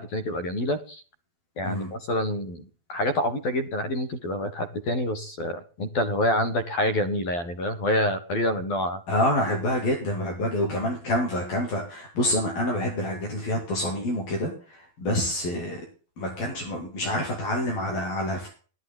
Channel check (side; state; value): right; late; 12 ms